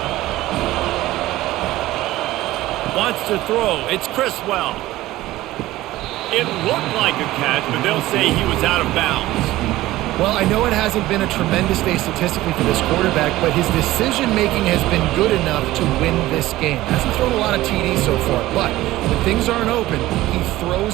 Wants to throw. It's Criswell. It looked like a catch, but they'll say he was out of bounds. Well, I know it hasn't been a tremendous day statistically for this quarterback, but his decision-making has been good enough to win this game. Hasn't thrown a lot of TDs so far, but when things aren't open, he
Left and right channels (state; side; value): quieter; left; 16.6 dB